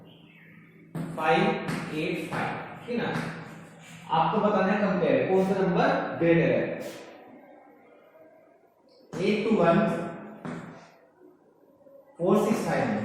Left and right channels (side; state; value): both; identical; correlation 1.00